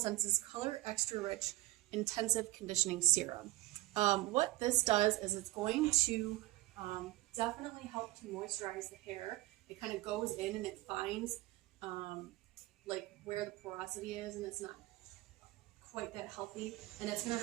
Color Extra Rich Intensive Conditioning Serum. What this does is it's going to definitely help to moisturize the hair. It kind of goes in and it finds like where the porosity is, and it's not quite that healthy. And it's going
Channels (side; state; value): left; quieter; 18.7 dB